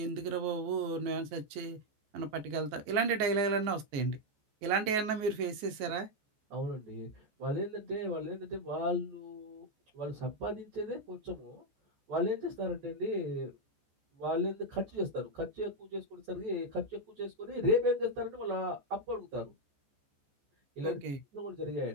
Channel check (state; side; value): late; left; 14 ms